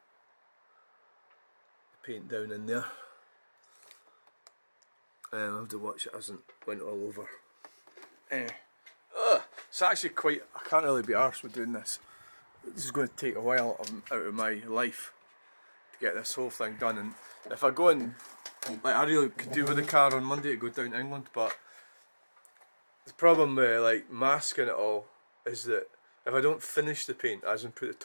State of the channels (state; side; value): inverted; both; correlation -1.00